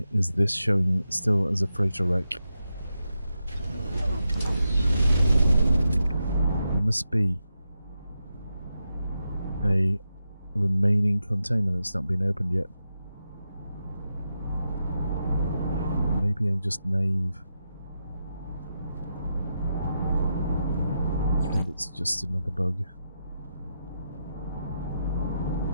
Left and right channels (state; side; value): inverted; both; correlation -0.86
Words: is this showing still as a freighter wreck? There must be a remaining container that's not been opened yet. Maybe I'm just naive. And it's just another bug.